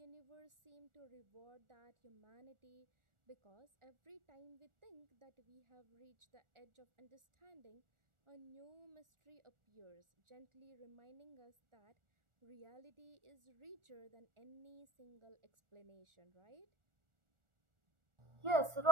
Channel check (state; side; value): late; left; 1.4 ms